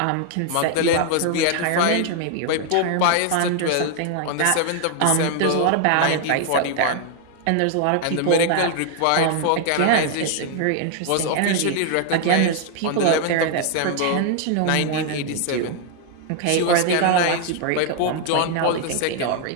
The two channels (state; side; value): different; both; correlation 0.00